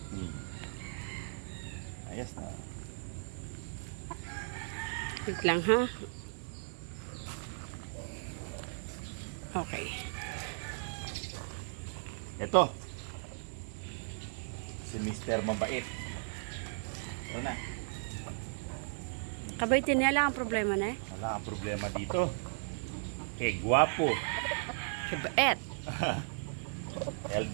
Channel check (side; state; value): left; silent; 54 dB below the other